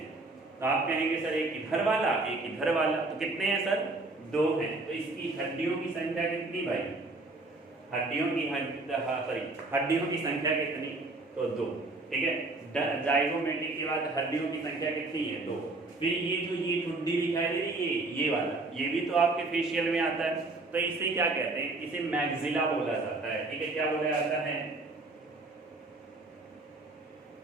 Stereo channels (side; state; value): left; quieter; 3.2 dB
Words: तो आप कहेंगे सर एक इधर वाला एक इधर वाला, तो कितने हैं सर, 2 हैं। तो इसकी हड्डियों की संख्या कितनी भाई, हड्डियों की हड्डियों की संख्या कितनी, तो 2, ठीक है। जाइगोमेटिक के बाद हड्डियों की संख्या कितनी है, 2। फिर ये जो ये ठुड्डी दिखाई दे रही है, ये वाला, ये भी तो आपके फेशियल में आता है। तो इसे क्या कहते हैं, इसे मैक्सिला बोला जाता है, ठीक है। क्या बोला जाता है,